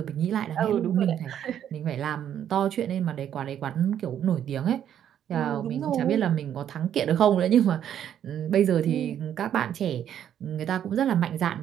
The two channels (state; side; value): quieter; left; 9.9 dB